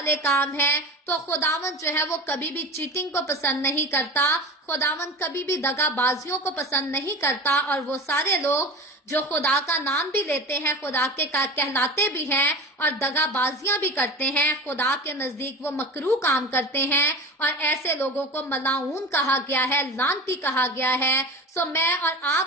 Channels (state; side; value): normal; both; correlation 0.31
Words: काम है। तो खुदावन जो है वो कभी भी चीटिंग को पसंद नहीं करता, खुदावन कभी भी दगाबाजियों को पसंद नहीं करता। और वो सारे लोग जो खुदा का नाम भी लेते हैं, खुदा के कहलाते भी हैं और दगाबाजियां भी करते हैं, खुदा के नजदीक वो मकरूह काम करते हैं और ऐसे लोगों को मलाऊन कहा गया है, लानती कहा गया है। सो मैं और